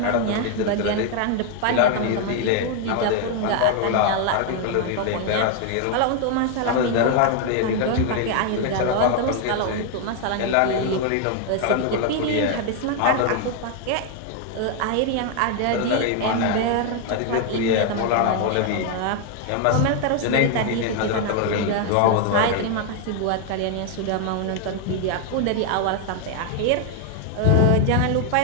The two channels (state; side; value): different; both; correlation 0.00